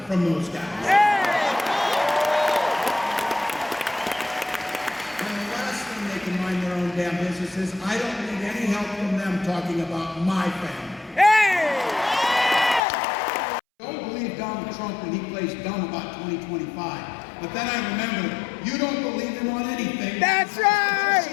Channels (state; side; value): drops out; right; at 12.8 s